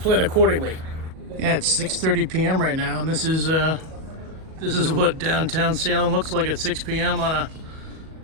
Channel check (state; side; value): late; left; 38 ms